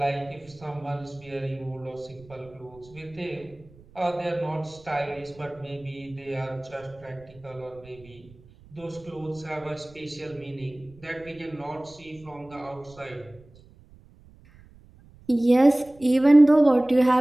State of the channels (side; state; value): right; noise; rumble, 25 dB below the sound